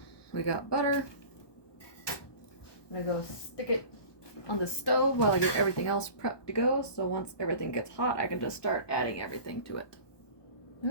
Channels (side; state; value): right; late; 1.2 ms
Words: we got butter. I'm gonna go stick it on the stove while I get everything else prepped to go. So once everything gets hot, I can just start adding everything to it.